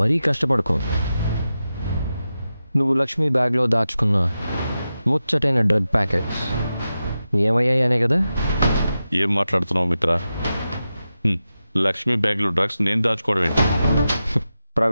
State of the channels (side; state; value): both; inverted; correlation -0.91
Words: కష్టపడుకో. నువ్వు లక్ష్మి బ్యాగ్లో దాచుకున్న ముచ్చటైన డ్రగ్ ప్యాకెట్స్ ఏమయ్యాయి అనే కదా. ఏం మాట్లాడుతున్నావు మిత్ర? లక్ష్మి బ్యాగ్లో డ్రగ్స్ నేను దాచుకోవడం ఏంటి?